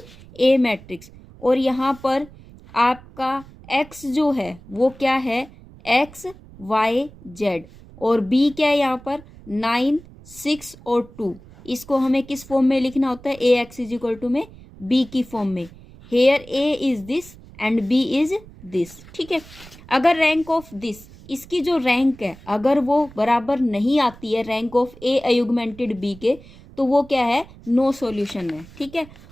ए मैट्रिक्स। और यहाँ पर आपका एक्स जो है वो क्या है, एक्स वाई जेड। और बी क्या है यहाँ पर 9 6 और 2। इसको हमें किस फॉर्म में लिखना होता है, A X is equal to में बी की फॉर्म में। Here A is this and B is this. ठीक है, अगर रैंक ऑफ दिस, इसकी जो रैंक है अगर वो बराबर नहीं आती है rank of A augmented B के, तो वो क्या है, नो सॉल्यूशन है। ठीक है,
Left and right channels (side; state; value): right; noise; rumble, 21 dB below the sound